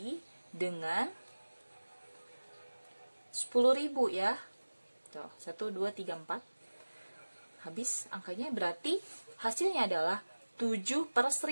dengan 10.000 ya. Tuh, 1 2 3 4. Habis angkanya, berarti hasilnya adalah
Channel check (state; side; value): inverted; both; correlation -1.00